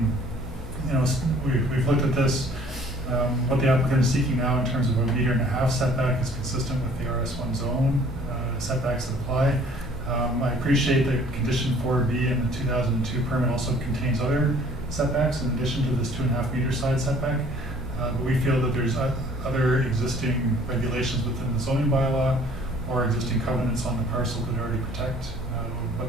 we've looked at this. What the applicant is seeking now in terms of a 1.5 meter setback is consistent with the RS1 zone setbacks that apply. I appreciate that condition 4B in the 2002 permit also contains other setbacks in addition to this 2.5 meter side setback. But we feel that there's other existing regulations within the zoning bylaw or existing covenants on the parcel that already protect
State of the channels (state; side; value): normal; both; correlation 0.55